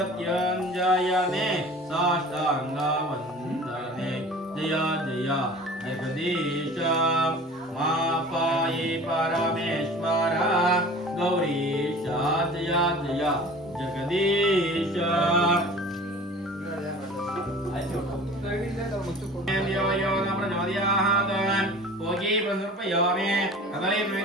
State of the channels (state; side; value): normal; both; correlation 0.42